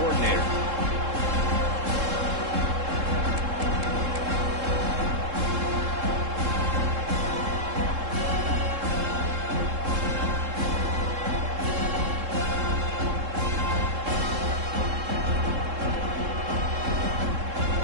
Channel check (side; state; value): left; late; 3.7 ms